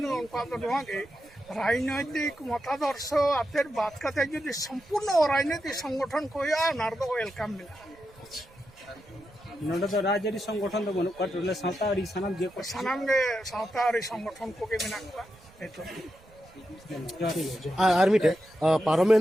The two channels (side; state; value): right; noise; rumble, 26 dB below the sound